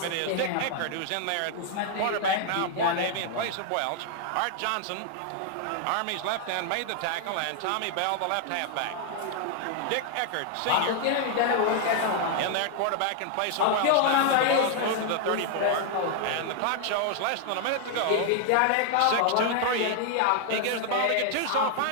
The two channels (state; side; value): different; both; correlation 0.00